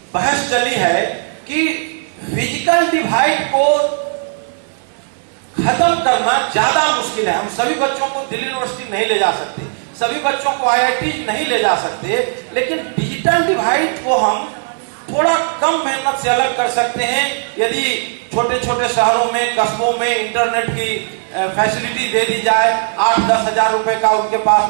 बहस चली है कि फिजिकल डिवाइड को खत्म करना ज्यादा मुश्किल है। हम सभी बच्चों को दिल्ली यूनिवर्सिटी नहीं ले जा सकते, सभी बच्चों को आईआईटी नहीं ले जा सकते, लेकिन डिजिटल डिवाइड को हम थोड़ा कम मेहनत से अलग कर सकते हैं यदि छोटे छोटे शहरों में, कस्बों में इंटरनेट की फैसिलिटी दे दी जाए। 8-10 हजार रुपए का उनके पास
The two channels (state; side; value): silent; left; digital silence